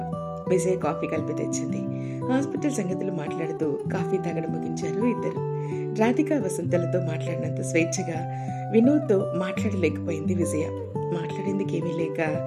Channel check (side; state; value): both; identical; correlation 1.00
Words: విజయ్ కాఫీ కలిపి తెచ్చింది. హాస్పిటల్ సంగతులు మాట్లాడుతూ కాఫీ తాగడం ముగించారు ఇద్దరు. రాధిక వసంతలతో మాట్లాడినంత స్వేచ్ఛగా వినోద్తో మాట్లాడలేకపోయింది విజయ. మాట్లాడేందుకేమీ లేక